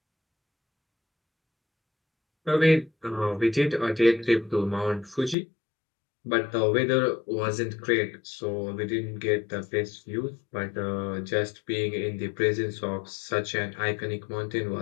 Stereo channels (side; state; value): right; drops out; at 5.4 s